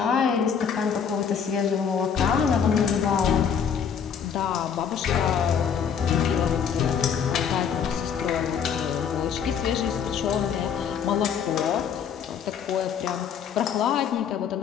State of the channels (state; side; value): quieter; right; 7.4 dB